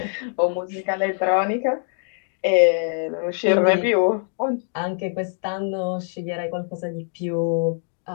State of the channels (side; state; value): right; silent; 56 dB below the other